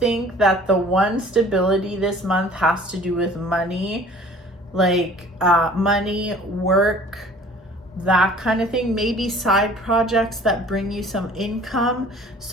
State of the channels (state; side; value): normal; both; correlation 0.50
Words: that the one stability this month has to do with money. Like, money, work, that kind of thing. Maybe side projects that bring you some income.